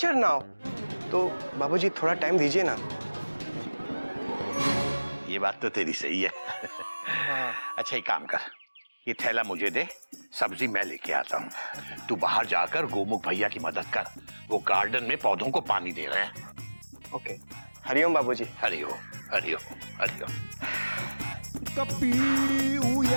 now. तो बाबूजी थोड़ा टाइम दीजिए ना। ये बात तो तेरी सही है। अच्छा एक काम कर, ये थैला मुझे दे, सब्जी मैं लेके आता हूँ। तू बाहर जाकर गोमुख भैया की मदद कर, वो गार्डन में पौधों को पानी दे रहे हैं। ओके, हरिओम बाबूजी। हरिओम हरिओम हरिओम। कपी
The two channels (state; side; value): inverted; both; correlation -1.00